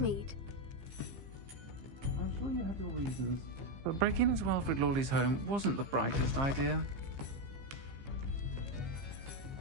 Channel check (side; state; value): left; late; 15 ms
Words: I'm sure you had your reasons, but breaking into Wilfred Lawley's home wasn't the brightest idea.